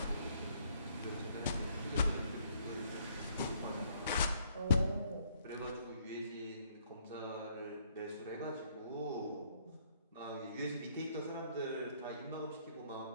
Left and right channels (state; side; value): inverted; both; correlation -0.67